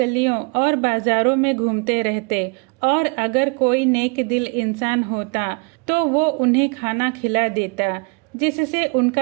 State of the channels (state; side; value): quieter; left; 32.6 dB